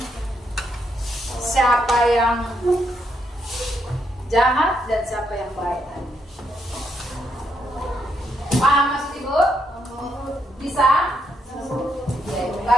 Siapa yang jahat dan siapa yang baik? Paham maksud ibu? Bisa? Ya, ibu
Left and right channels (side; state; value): both; normal; correlation 0.78